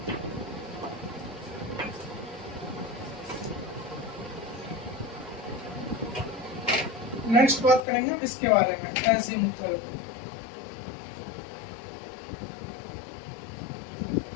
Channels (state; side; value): drops out; right; at 7.8 s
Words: नेक्स्ट बात करेंगे इसके बारे में, एजीमुथल।